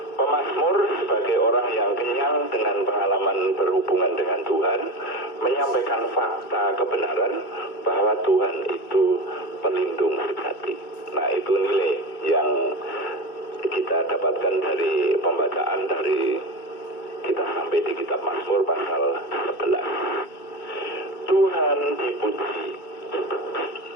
Pemazmur sebagai orang yang kenyang dengan pengalaman berhubungan dengan Tuhan, menyampaikan fakta kebenaran bahwa Tuhan itu pelindung sejati. Nah, itu nilai yang kita dapatkan dari pembacaan dari kita sampai di kitab Mazmur pasal 11. Tuhan dipuji.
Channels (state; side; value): late; right; 2.3 ms